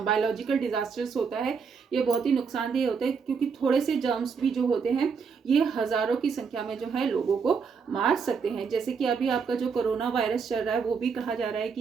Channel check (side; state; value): left; quieter; 5.8 dB